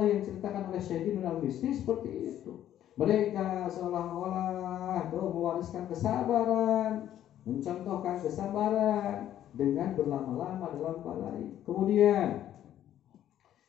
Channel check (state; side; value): quieter; right; 11.5 dB